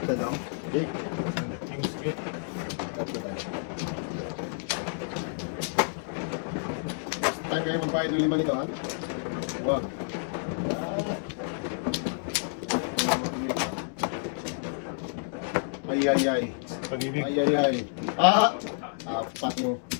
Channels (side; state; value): right; silent; digital silence